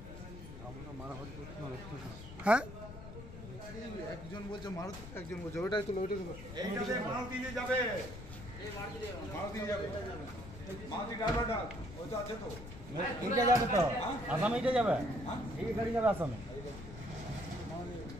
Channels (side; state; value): left; noise; rumble, 12 dB below the sound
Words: হ্যাঁ, একজন বলছে মারুতি, একজন বলছে ওইটাই তুলো, ওইটাই তুলো। মারুতি দিয়ে যাবে, মারুতি যাবে, মারুতি ড্রাইভারটা ওই তো আছে তো, এইটা যাবে তো আসামে, এইটা যাবে, এই গাড়ি যাবে আসামে।